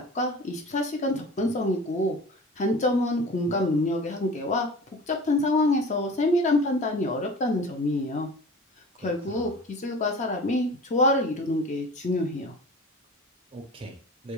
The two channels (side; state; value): both; normal; correlation 0.39